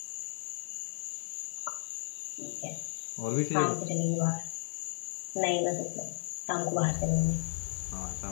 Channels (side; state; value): right; silent; 55 dB below the other